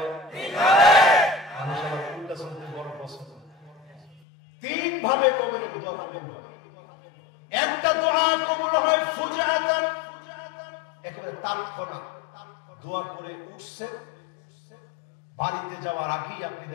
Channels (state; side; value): drops out; right; at 4.2 s